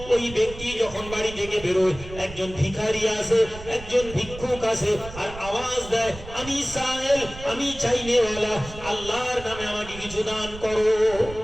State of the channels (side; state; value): right; noise; rumble, 14 dB below the sound